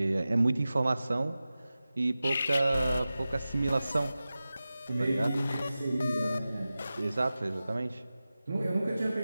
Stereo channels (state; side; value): inverted; both; correlation -0.95